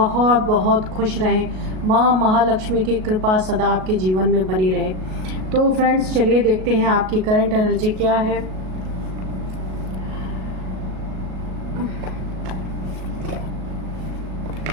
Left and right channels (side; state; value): left; late; 38 ms